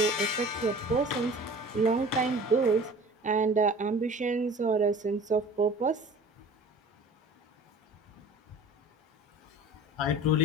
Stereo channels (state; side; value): normal; both; correlation 0.43